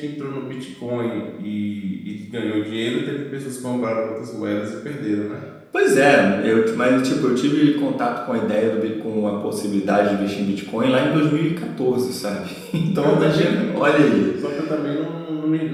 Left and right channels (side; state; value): both; identical; correlation 1.00